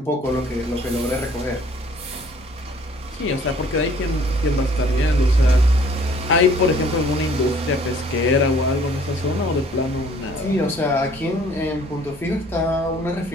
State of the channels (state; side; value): normal; both; correlation 0.56